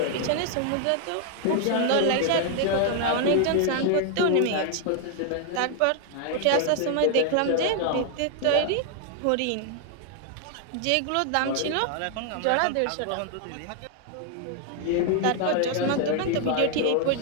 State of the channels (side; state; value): both; different; correlation 0.00